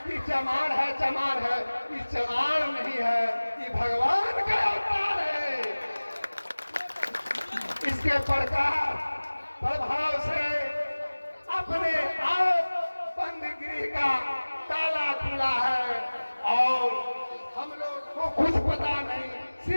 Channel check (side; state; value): both; inverted; correlation -1.00